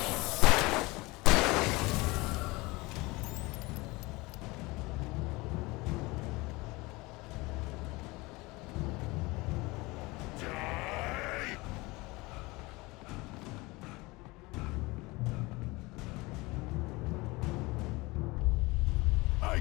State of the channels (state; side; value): quieter; right; 23.1 dB